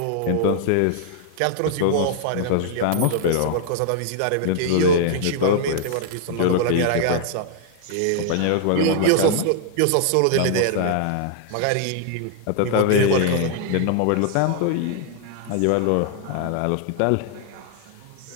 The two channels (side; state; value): both; different; correlation -0.01